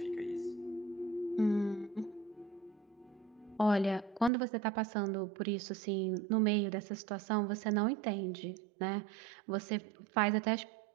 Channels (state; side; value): drops out; left; at 4.3 s